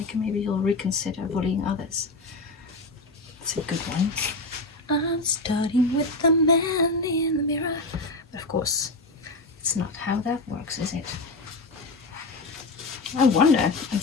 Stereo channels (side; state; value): right; quieter; 3.1 dB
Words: and maybe you'll reconsider bullying others. It's a good one. I'm starting with the man in the mirror. Of course, it's not how that works, is it? I wonder, I'm